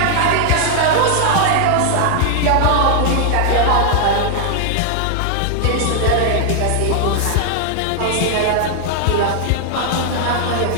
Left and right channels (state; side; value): different; both; correlation -0.01